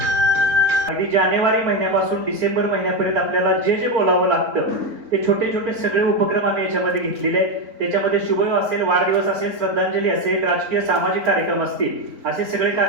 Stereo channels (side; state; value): left; late; 4.0 ms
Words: अगदी जानेवारी महिन्यापासून डिसेंबर महिन्यापर्यंत आपल्याला जे जे बोलावं लागतं ते छोटे छोटे सगळे उपक्रम आम्ही याच्यामध्ये घेतलेले आहेत. त्याच्यामध्ये शुभविवाह असेल, वाढदिवस असेल, श्रद्धांजली असेल, राजकीय सामाजिक कार्यक्रम असतील, असे सगळे